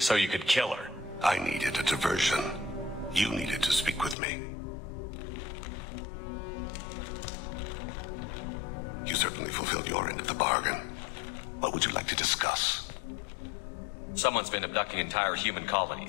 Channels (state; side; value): drops out; right; at 4.2 s